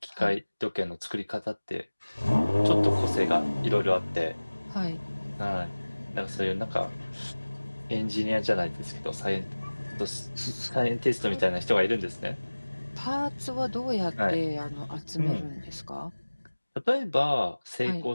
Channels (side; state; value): both; inverted; correlation -1.00